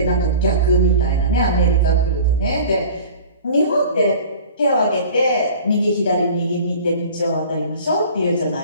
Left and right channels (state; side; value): inverted; both; correlation -0.42